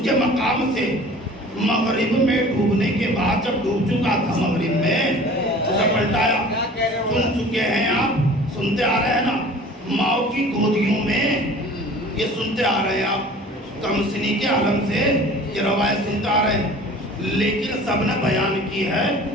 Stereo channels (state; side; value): normal; both; correlation 0.45